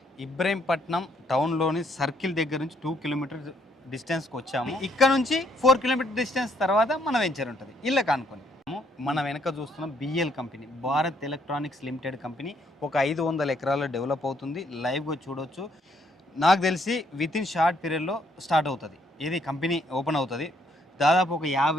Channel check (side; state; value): both; normal; correlation 0.69